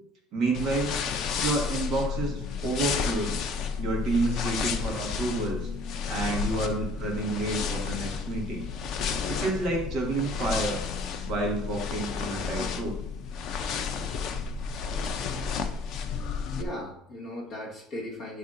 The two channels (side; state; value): both; normal; correlation 0.54